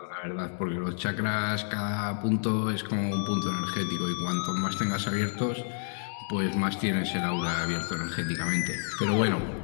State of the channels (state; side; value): silent; right; 58 dB below the other